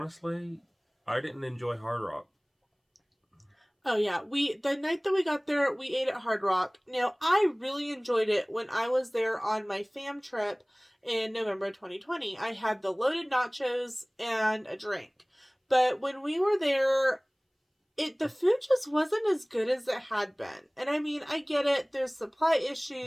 I didn't enjoy Hard Rock. Oh yeah, the night that we got there, we ate at Hard Rock. Now, I really enjoyed it when I was there on my fam trip in November 2020. I had the loaded nachos and a drink. But when we were there, the food just wasn't as good as it had been. And I mean, I get it. There's supply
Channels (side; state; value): both; identical; correlation 1.00